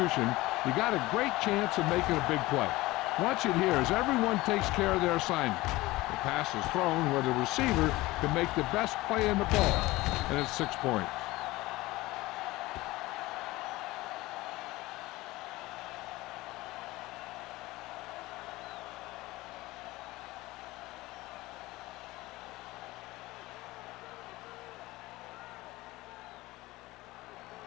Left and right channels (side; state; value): right; quieter; 19.4 dB